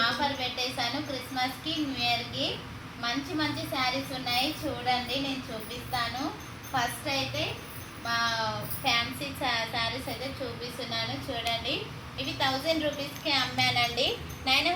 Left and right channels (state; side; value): identical; both; correlation 1.00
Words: ఆఫర్ పెట్టేశాను. క్రిస్మస్కి న్యూ ఇయర్కి మంచి మంచి శారీస్ ఉన్నాయి, చూడండి నేను చూపిస్తాను. ఫస్ట్ అయితే మా ఫ్యాన్సీ శారీస్ అయితే చూపిస్తున్నాను, చూడండి. ఇవి 1000 రూపీస్కి అమ్మానండి.